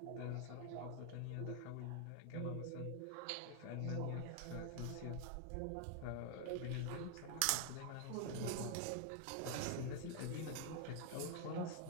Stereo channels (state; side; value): different; both; correlation 0.00